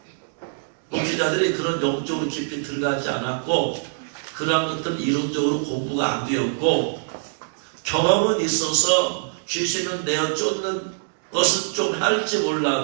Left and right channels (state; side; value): silent; left; digital silence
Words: 목회자들이 그런 영적으로 깊이 들어가지 않았고, 그러한 것들은 이론적으로 공부가 안 되었고, 경험은 있어서 귀신은 내어 쫓는 것은 좀 할지